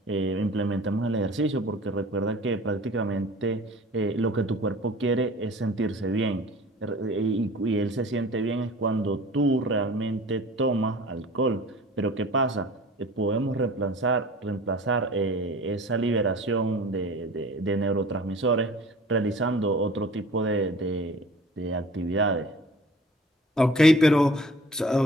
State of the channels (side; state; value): both; normal; correlation 0.44